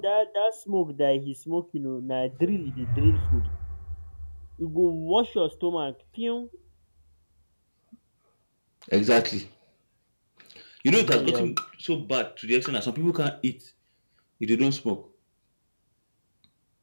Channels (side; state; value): both; inverted; correlation -1.00